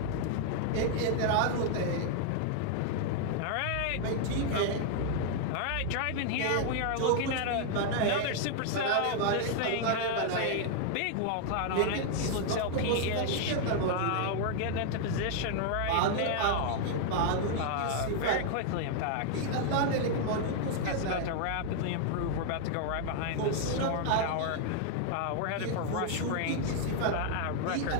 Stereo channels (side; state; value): both; different; correlation 0.00